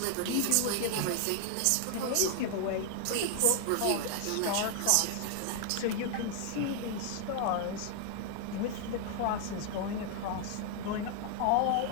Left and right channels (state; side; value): different; both; correlation 0.00